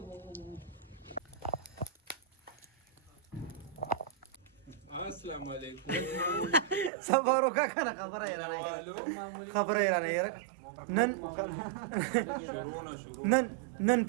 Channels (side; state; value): left; drops out; at 6.9 s